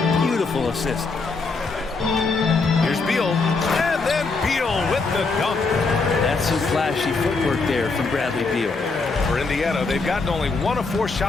Beautiful assist. Here's Beal. And then Beal with the dunk. That's some flashy footwork there from Bradley Beal. For Indiana, they've gotten only 1 of 4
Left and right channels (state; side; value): quieter; right; 4.1 dB